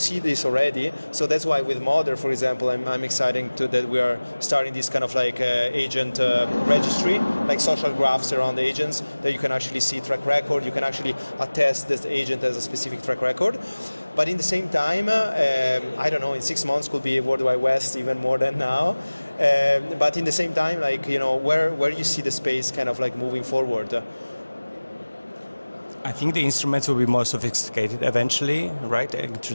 this already. So that's why with Modder, for example, I'm excited that we are starting this kind of like agent registry, like social graphs around agents that you can actually see track record. You can actually attest this agent as a specific track record. But in the same time, I don't know, in 6 months could be World Wide West even more than now. But in the same time, like, where you see the space kind of like moving forward? I think the instruments will be more sophisticated eventually, right?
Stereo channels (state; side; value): inverted; both; correlation -1.00